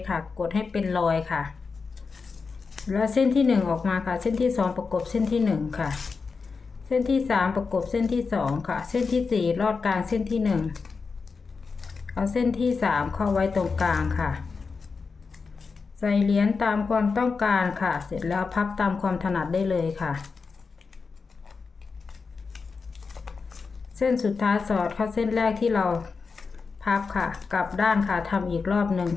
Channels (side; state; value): right; quieter; 4.8 dB